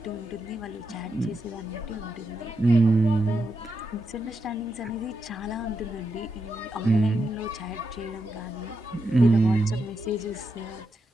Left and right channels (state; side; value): normal; both; correlation 0.85